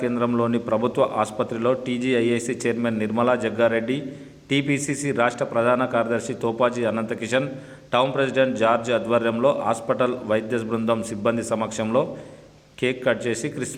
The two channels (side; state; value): both; identical; correlation 1.00